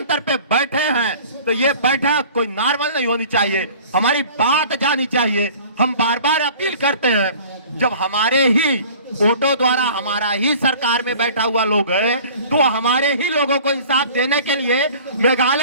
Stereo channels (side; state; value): both; inverted; correlation -0.46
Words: पे बैठे हैं तो ये बैठक कोई नॉर्मल नहीं होनी चाहिए, हमारी बात जानी चाहिए। हम बार बार अपील करते हैं, जब हमारे ही वोटों द्वारा हमारा ही सरकार में बैठा हुआ लोग है तो हमारे ही लोगों को इंसाफ देने के लिए